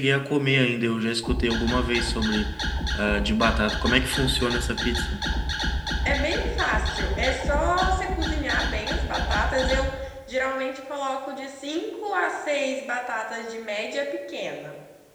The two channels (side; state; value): both; identical; correlation 1.00